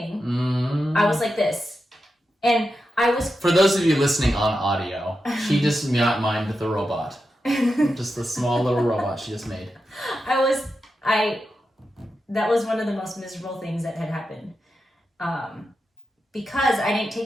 I was like this. And I was... For those of you listening on audio, she just mimed the robot. Just the small little robot she just made. That was one of the most miserable things that had happened. Because I didn't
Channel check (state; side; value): normal; both; correlation 0.89